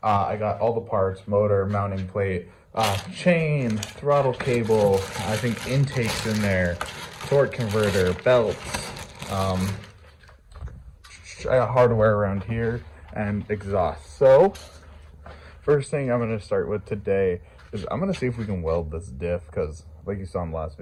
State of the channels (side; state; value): both; identical; correlation 1.00